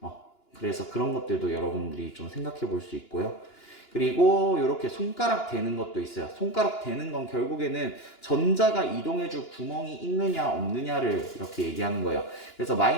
그래서 그런 것들도 여러분들이 좀 생각해 볼 수 있고요. 그리고 이렇게 손가락 대는 것도 있어요. 손가락 대는 건 결국에는 전자가 이동해줄 구멍이 있느냐 없느냐를 이렇게 얘기하는 거예요. 그래서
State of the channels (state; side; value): late; right; 2.9 ms